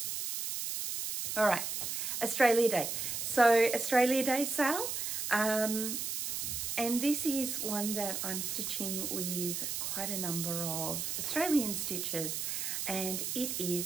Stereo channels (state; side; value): noise; right; hiss, 3 dB below the sound